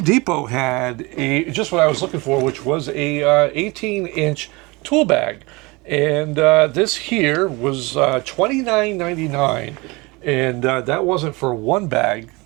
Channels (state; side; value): quieter; left; 24.9 dB